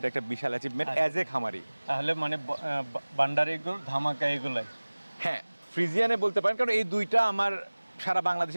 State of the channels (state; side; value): inverted; both; correlation -1.00